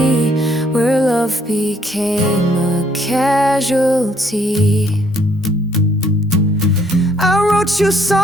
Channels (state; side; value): normal; both; correlation 0.67